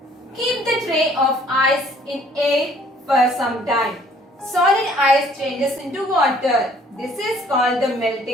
Keep the tray of ice in air for some time. Solid ice changes into water. This is called the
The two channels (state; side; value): normal; both; correlation 0.59